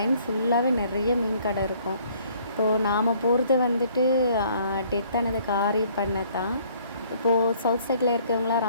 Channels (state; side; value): inverted; both; correlation -0.60